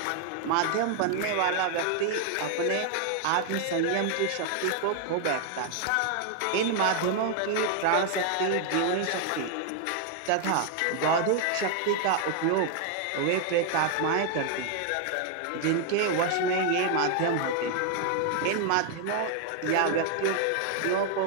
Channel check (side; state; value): both; different; correlation 0.00